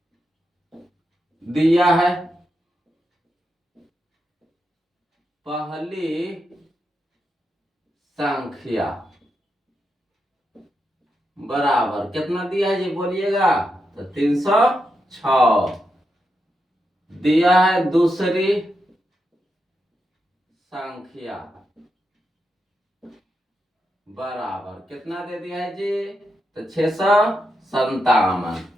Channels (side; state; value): both; normal; correlation 0.85